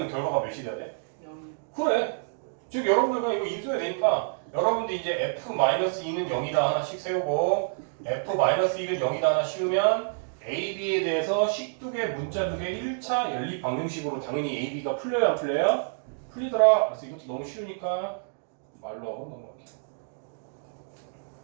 결과가 몇이 돼야 돼? 0. 그래. 즉 여러분들 그냥 이거 인수해야 되니까 여러분들 이제 f-2는 0이다 하나씩 세우고 f-1은 0이다 하나 씌우면 a, b에 대해서 식두개, 문자두개 1차 연립 방정식으로 당연히 a, b가 풀려요 안 풀려요? 풀리더라. 그래서 이것도 너무 쉬우니까 말로 하고 넘어갈게요.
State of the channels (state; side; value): silent; left; digital silence